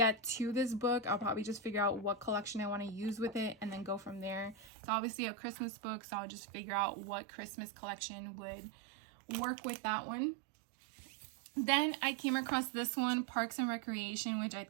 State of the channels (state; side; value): drops out; left; at 4.7 s